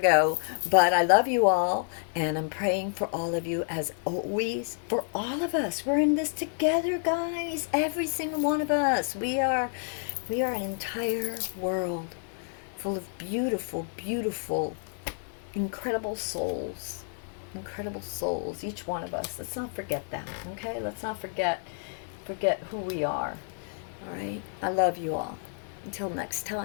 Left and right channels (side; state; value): right; silent; 58 dB below the other